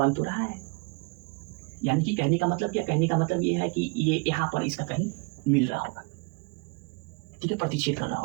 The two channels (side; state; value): left; quieter; 32.3 dB